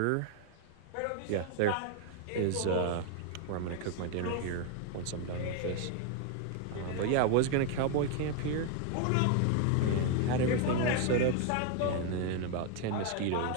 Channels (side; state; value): both; different; correlation 0.01